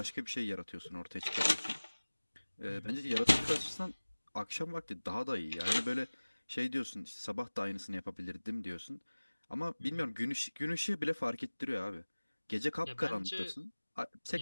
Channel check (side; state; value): both; inverted; correlation -1.00